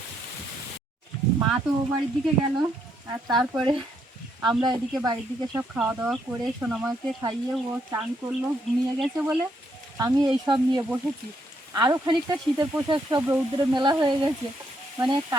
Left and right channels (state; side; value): normal; both; correlation 0.74